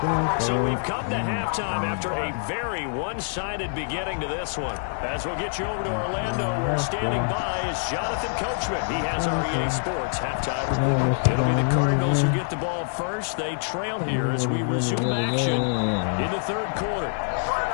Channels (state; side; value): silent; right; 59 dB below the other